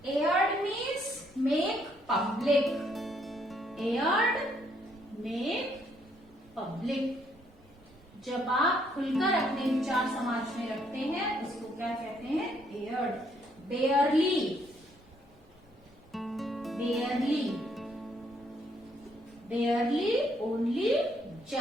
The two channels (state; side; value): normal; both; correlation 0.70